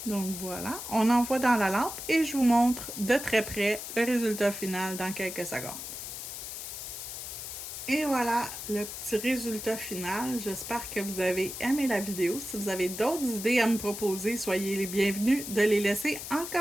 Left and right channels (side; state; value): left; noise; hiss, 8 dB below the sound